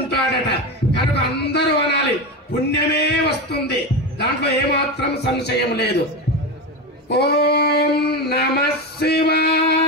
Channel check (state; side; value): normal; both; correlation 0.18